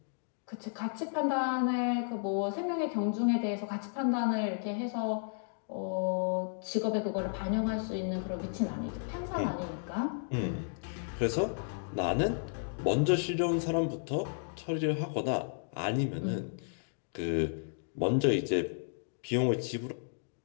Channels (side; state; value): right; silent; digital silence